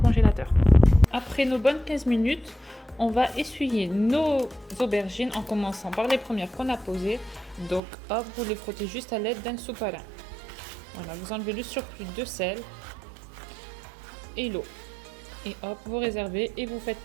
Après nos bonnes 15 minutes, on va essuyer nos aubergines en commençant par les premières qu'on a posées. Donc hop, vous les frottez juste à l'aide d'un sopalin. Voilà, vous enlevez le surplus de sel et l'eau. Et hop, vous réservez et vous faites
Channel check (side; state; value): left; drops out; at 7.8 s